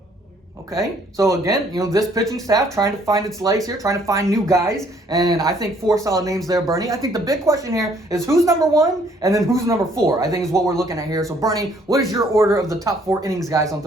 Okay, so again, this pitching staff trying to find its legs here, trying to find new guys, and I think 4 solid names there, Bernie. I think the big question here is who's number 1 and then who's number 4, I think is what we're looking at here. So Bernie, what is your order of the top 4 innings guys on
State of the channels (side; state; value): both; normal; correlation 0.63